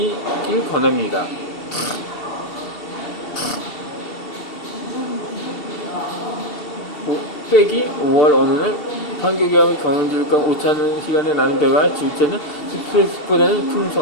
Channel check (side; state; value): right; late; 2.7 ms